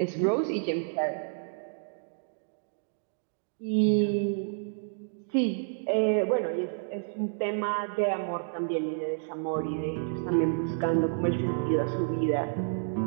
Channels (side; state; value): left; silent; digital silence